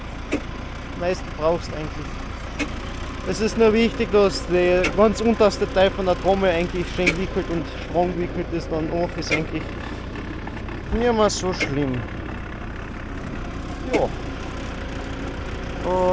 du am meisten brauchst eigentlich. Es ist nur wichtig, dass der ganz unterste Teil von der Trommel eigentlich schön gewickelt und strong gewickelt ist, dann auch ist eigentlich nicht mehr so schlimm. Ja.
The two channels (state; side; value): identical; both; correlation 1.00